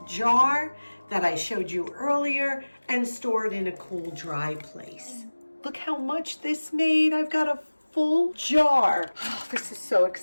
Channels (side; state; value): both; inverted; correlation -1.00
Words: jar that I showed you earlier and store it in a cool, dry place. Look how much this made. I've got a full jar. Oh, this is so